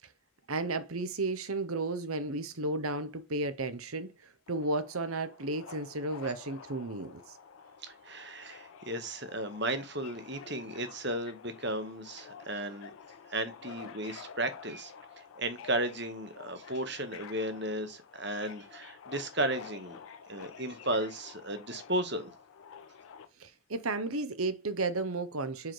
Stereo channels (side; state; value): both; normal; correlation -0.16